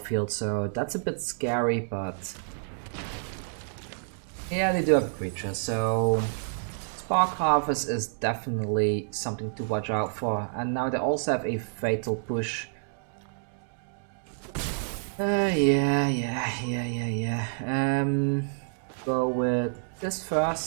so that's a bit scary, but yeah, they do have a creature, so Spark Harvest is definitely something to watch out for. And now they also have a Fatal Push. Yeah. Go with this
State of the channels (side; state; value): left; silent; digital silence